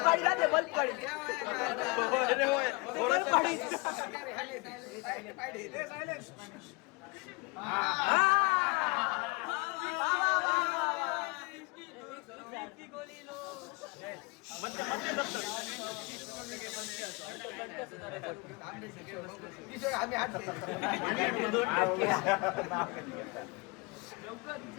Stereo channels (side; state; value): right; quieter; 27.9 dB